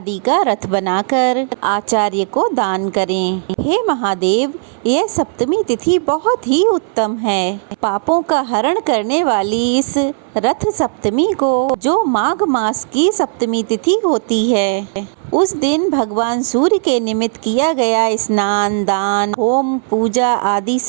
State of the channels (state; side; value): silent; left; 62 dB below the other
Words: का रथ बनाकर आचार्य को दान करें। हे महादेव, यह सप्तमी तिथि बहुत ही उत्तम है। पापों का हरण करने वाली इस रथ सप्तमी को, जो माघ मास की सप्तमी तिथि होती है, उस दिन भगवान सूर्य के निमित्त किया गया स्नान, दान, होम, पूजा आदि